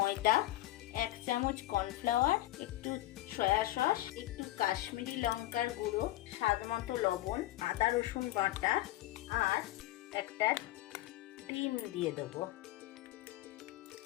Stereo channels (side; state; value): right; quieter; 16.3 dB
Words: 1 চামচ কর্নফ্লাওয়ার, একটু সয়া সস, একটু কাশ্মীরি লঙ্কার গুঁড়ো, স্বাদ মতো লবণ, আদা রসুন বাটা আর একটা ডিম দিয়ে দেবো।